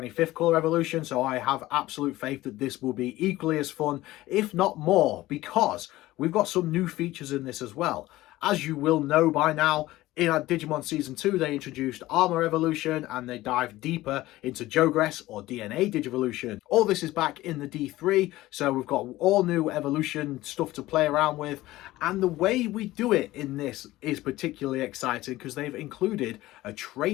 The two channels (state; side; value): quieter; right; 17.0 dB